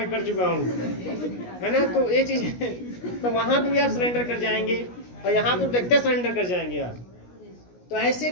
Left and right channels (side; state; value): right; late; 17 ms